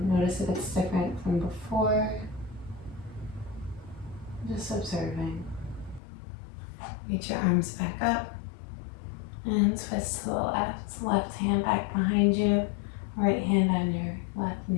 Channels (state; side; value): drops out; right; at 6.0 s